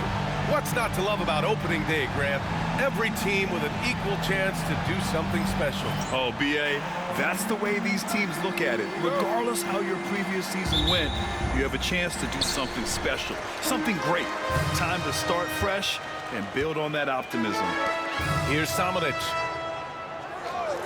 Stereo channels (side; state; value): both; identical; correlation 1.00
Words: What's not to love about opening day, Grant? Every team with an equal chance to do something special. Oh, B.A., that's the way these teams look at it. Regardless how your previous season went, you have a chance to do something special, something great. Time to start fresh and build on that optimism. Here's Samanic.